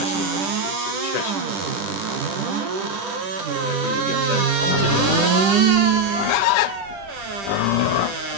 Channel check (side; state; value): left; late; 10 ms